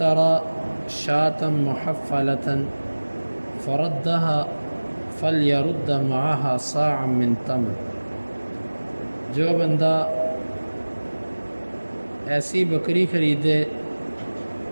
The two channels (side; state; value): both; inverted; correlation -1.00